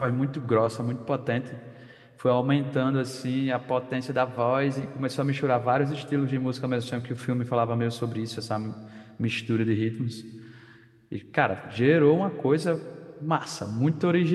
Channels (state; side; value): identical; both; correlation 1.00